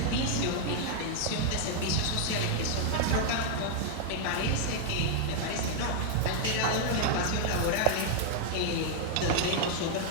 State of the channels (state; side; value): different; both; correlation 0.00